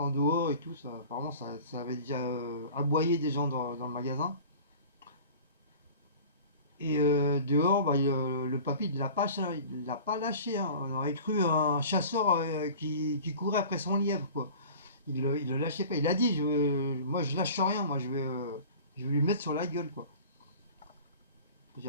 dehors et tout ça. Apparemment ça avait déjà aboyé des gens dans le magasin. Et dehors, le papy il l'a pas lâché, hein. On aurait cru un chasseur qui courait après son lièvre, quoi. Il le lâchait pas. Il a dit, moi je lâche rien, moi je vais lui mettre sur la gueule, quoi.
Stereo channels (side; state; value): both; inverted; correlation -0.41